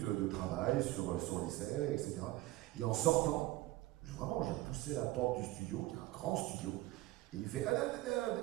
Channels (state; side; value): quieter; left; 17.9 dB